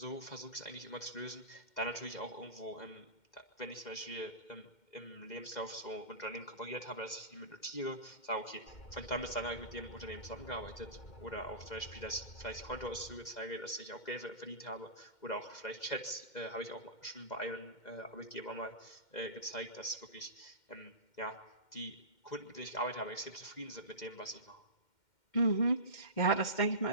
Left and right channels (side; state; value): right; late; 2.1 ms